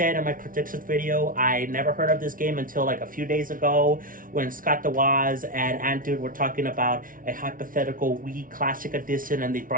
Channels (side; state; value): left; late; 0.39 ms